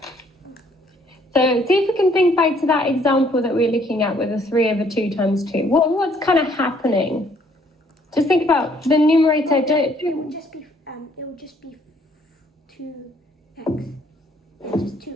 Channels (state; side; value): normal; both; correlation 0.64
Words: So see if we can think back to that example that we were looking at with the 3 over 2 times 2. What's kind of happening? Just think about the numerator. It will just be 2x. Yeah, just